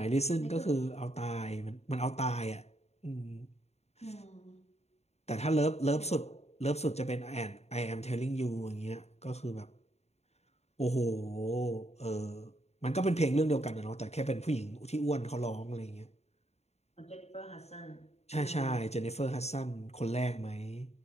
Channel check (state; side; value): late; right; 0.31 ms